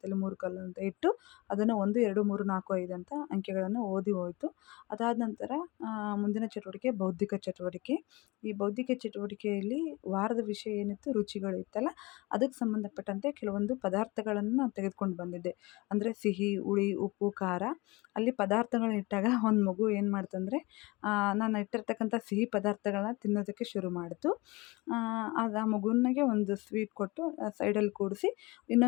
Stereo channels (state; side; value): quieter; right; 23.6 dB